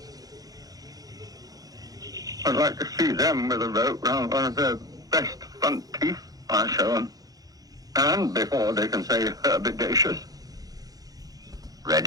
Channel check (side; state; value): left; late; 0.18 ms